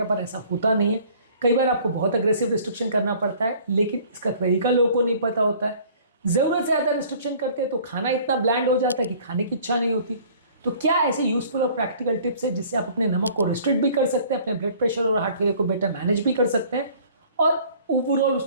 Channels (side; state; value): both; inverted; correlation -0.53